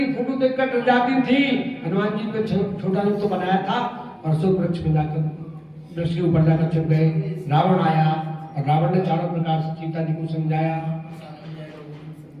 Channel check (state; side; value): identical; both; correlation 1.00